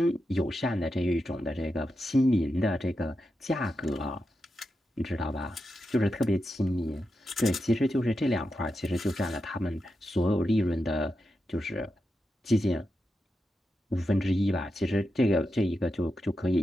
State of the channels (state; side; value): normal; both; correlation 0.88